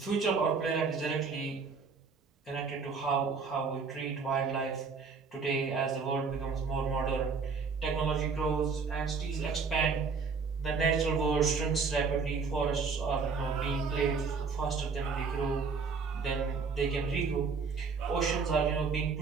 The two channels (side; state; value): left; quieter; 5.1 dB